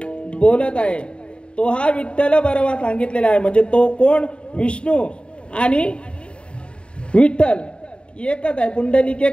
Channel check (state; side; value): late; right; 0.055 ms